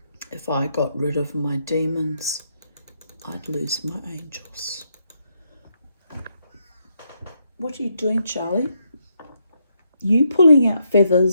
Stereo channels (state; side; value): inverted; both; correlation -0.78